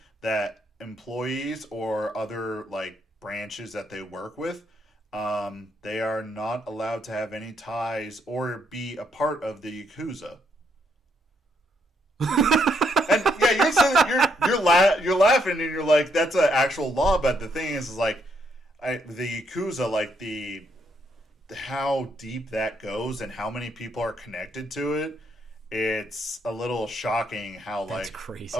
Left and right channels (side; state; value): both; normal; correlation 0.74